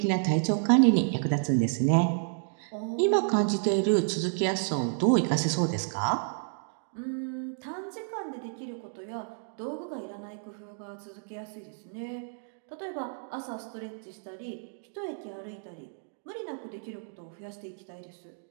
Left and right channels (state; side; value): silent; left; digital silence